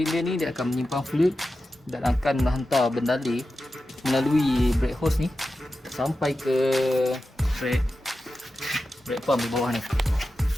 ni, dia akan menyimpan fluid dan akan menghantar bendali melalui brake hose ni sampai ke brake pump di bawah ni.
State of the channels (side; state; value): both; normal; correlation 0.92